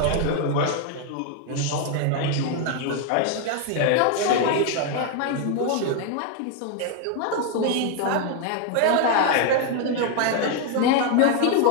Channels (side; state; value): both; different; correlation 0.01